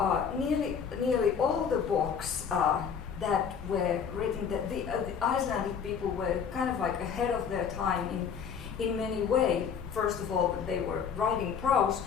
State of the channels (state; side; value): quieter; right; 7.0 dB